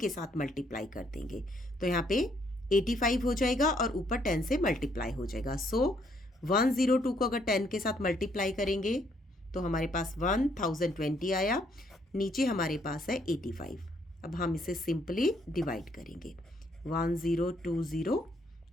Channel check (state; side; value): normal; both; correlation 0.70